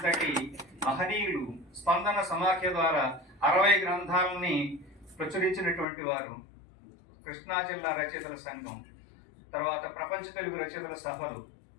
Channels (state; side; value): drops out; right; at 5.9 s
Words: మహనీయులు. స్పందన సమాఖ్య ద్వారా 60 గ్రంథాలని ప్రచురించినటువంటి వారు. కృష్ణా జిల్లా రచయితల సంఘం, తర్వాత ప్రపంచ తెలుగు రచయితల సభలు,